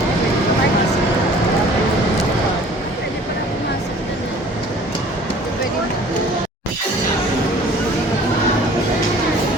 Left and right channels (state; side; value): normal; both; correlation 0.50